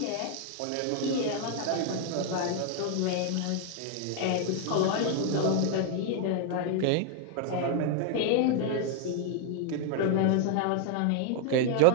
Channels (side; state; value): both; different; correlation 0.00